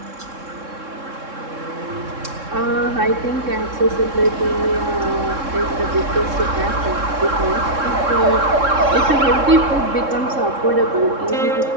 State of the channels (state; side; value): late; left; 3.7 ms